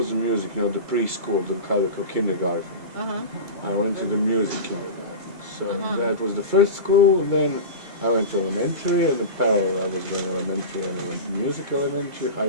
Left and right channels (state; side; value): late; left; 2.3 ms